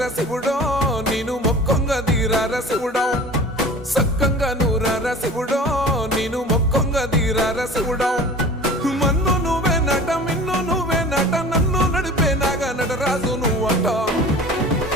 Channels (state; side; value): normal; both; correlation 0.41